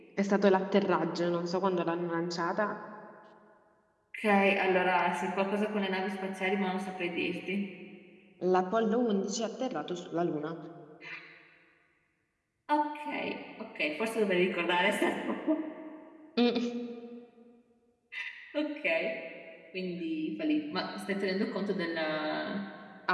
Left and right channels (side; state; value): both; identical; correlation 1.00